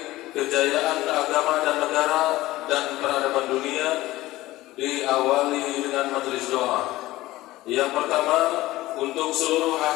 kejayaan agama dan negara dan peradaban dunia. Diawali dengan majelis doa. Yang pertama, untuk seluruh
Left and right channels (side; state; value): right; quieter; 17.4 dB